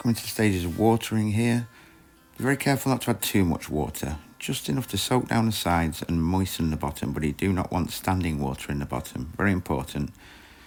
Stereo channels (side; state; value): both; identical; correlation 1.00